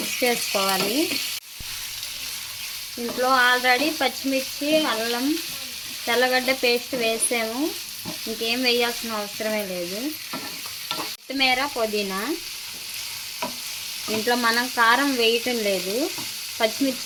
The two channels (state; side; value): identical; both; correlation 1.00